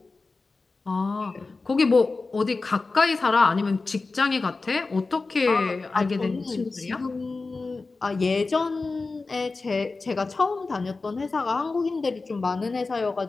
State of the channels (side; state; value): right; quieter; 3.8 dB